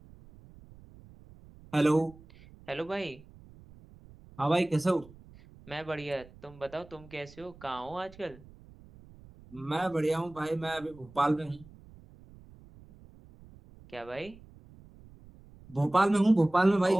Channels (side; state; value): right; noise; rumble, 22 dB below the sound